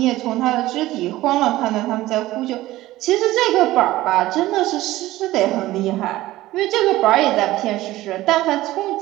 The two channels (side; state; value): left; quieter; 16.6 dB